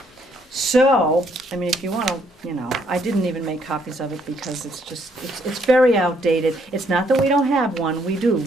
So, I mean, if you wanna, I didn't even make copies of it because it's very outdated. It's not that we don't have one, we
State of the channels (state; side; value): normal; both; correlation 0.70